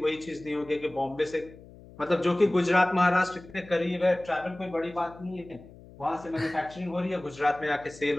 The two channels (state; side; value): noise; left; hum, 20 dB below the sound